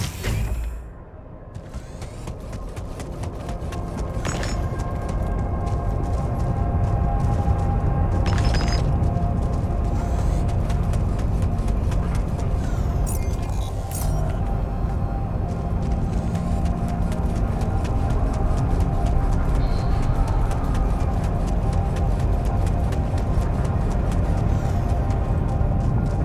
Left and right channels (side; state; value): both; identical; correlation 1.00